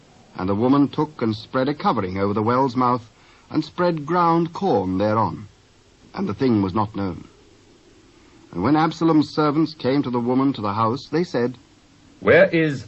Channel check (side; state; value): both; identical; correlation 1.00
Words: And the woman took and spread a covering over the well's mouth, and spread ground corn thereon, and the thing was not known. And when Absalom's servants came to the woman to the house, they said, Where is